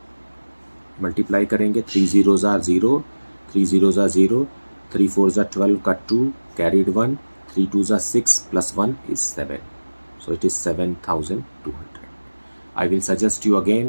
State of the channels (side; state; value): both; inverted; correlation -1.00